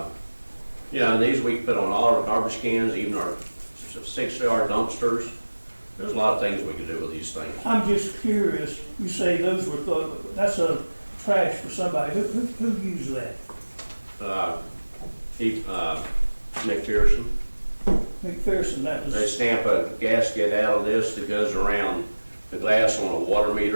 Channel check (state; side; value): inverted; both; correlation -1.00